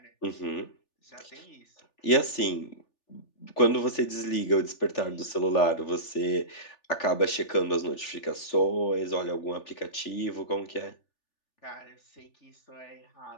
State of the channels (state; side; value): late; right; 3.4 ms